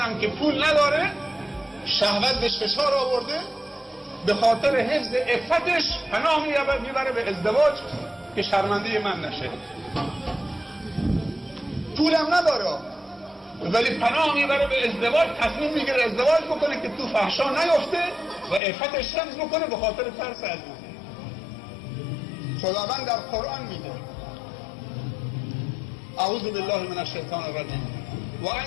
که پول نداره، شهوت بهش فشار آورده، به خاطر حفظ عفتش پناه میبره به ازدواج که شرمنده من نشه. پولم نداره ولی پناه میبره به ازدواج، تصمیم میگیره ازدواج بکنه که تو فحشا نیفته و عفتش حفظ بکنه به خاطر ترس از من. خداوند در قرآن میگه اعوذ بالله من الشیطان الرجیم و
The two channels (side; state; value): right; drops out; at 18.6 s